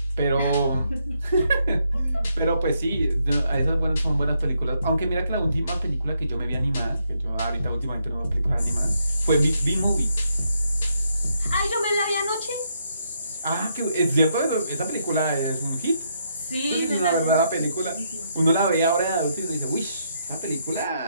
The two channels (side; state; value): both; inverted; correlation -0.76